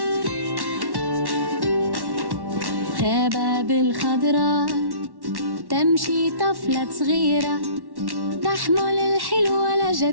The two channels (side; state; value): left; late; 1.1 ms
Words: غابة بالخضراء تمشي طفلة صغيرة تحمل الحلوة